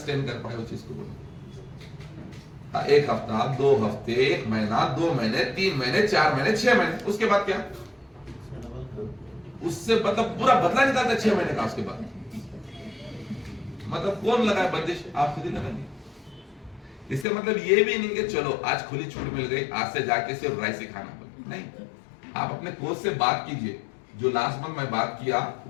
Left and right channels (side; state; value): right; drops out; at 17.2 s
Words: कर पाए उस चीज को? बोलो, 1 हफ्ता, 2 हफ्ते, 1 महीना, 2 महीने, 3 महीने, 4 महीने, 6 महीने, उसके बाद क्या? उससे मतलब पूरा बदला निकालता 6 महीने का। उसके बाद मतलब कौन लगाए बंदिश? आप खुद ही लगाएंगे। इससे मतलब ये भी नहीं कि चलो आज खुली छूट मिल गई, आज से जाके सिर्फ राइस ही खाना पड़े। नहीं, आप अपने कोच से बात कीजिए। जो लास्ट मंथ मैं बात किया,